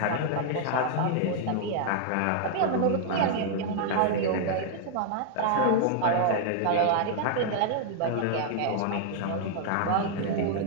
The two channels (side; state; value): both; different; correlation -0.01